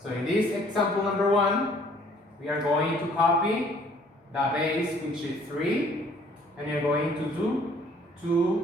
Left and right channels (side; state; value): both; normal; correlation 0.58